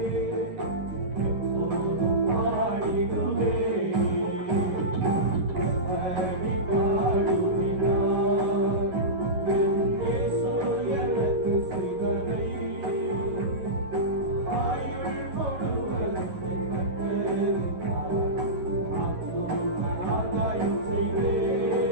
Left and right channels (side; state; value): left; late; 11 ms